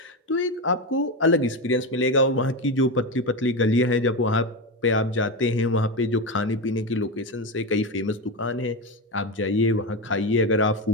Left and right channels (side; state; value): both; normal; correlation 0.15